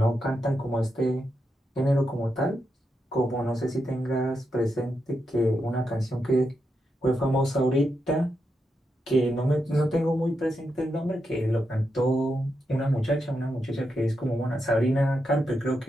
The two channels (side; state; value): both; normal; correlation 0.85